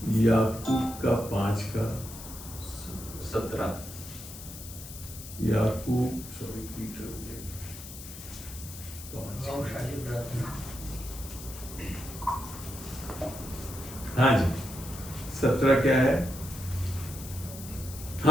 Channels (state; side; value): noise; left; hiss, 13 dB below the sound